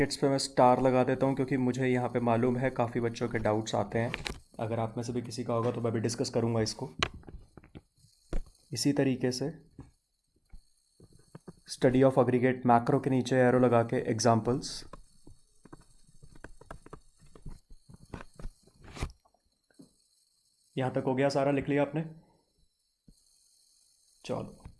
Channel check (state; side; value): identical; both; correlation 1.00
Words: पे मैं स्टार लगा देता हूँ क्योंकि मुझे यहाँ पे मालूम है काफ़ी बच्चों के डाउट्स आते हैं। अगर आप में से भी किसी का होगा तो मैं भी डिस्कस करूँगा इसको। इसी तरीके से स्टडी ऑफ एग्रीगेट मैक्रो के नीचे एरो लगा के एग्जाम्पल्स। यहाँ तक हो गया सारा, लिख लिया आपने? चलो,